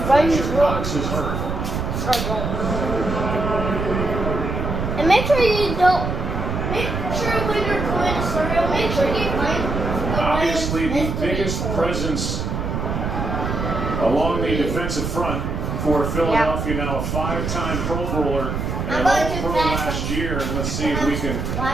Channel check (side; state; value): right; noise; rumble, 2 dB below the sound